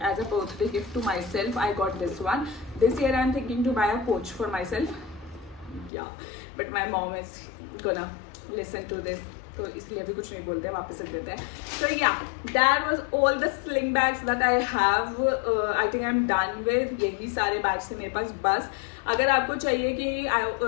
as a birthday gift to myself. I got this one. This year I am thinking to buy a Coach for myself. Yeah, but my mom is gonna listen to this, तो इसलिए अभी कुछ नहीं बोलते हैं, वापस रख देते हैं. So yeah, that was all the sling bags that I have. I think I'm done with. यही सारे bags थे मेरे पास बस. अगर आपको चाहिए कि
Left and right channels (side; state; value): right; drops out; at 5.9 s